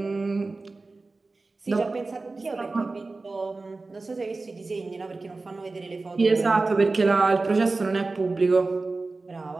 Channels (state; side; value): quieter; left; 3.6 dB